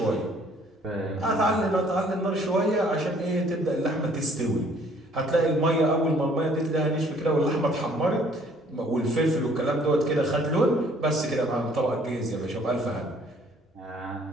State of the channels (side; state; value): both; normal; correlation 0.59